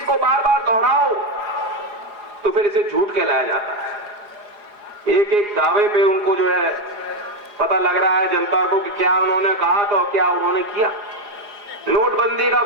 को बार बार दोहराओ तो फिर इसे झूठ कहलाया जाता है। एक एक दावे पे उनको जो है पता लग रहा है जनता को कि क्या उन्होंने कहा तो क्या उन्होंने किया। नोटबंदी का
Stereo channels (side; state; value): left; late; 4.8 ms